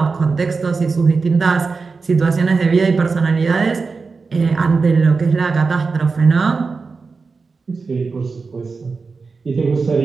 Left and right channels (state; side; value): quieter; left; 4.5 dB